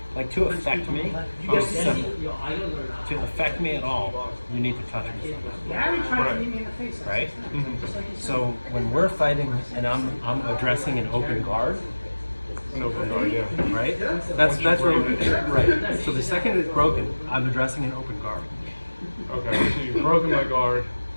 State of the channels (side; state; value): both; inverted; correlation -1.00